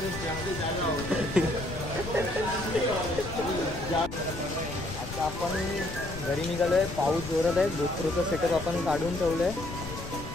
आता आपण घरी निघालोय, पाऊस जोरात आहे. GoProचं सेटअप आपण काढून ठेवलंय.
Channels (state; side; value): noise; left; rumble, 10 dB below the sound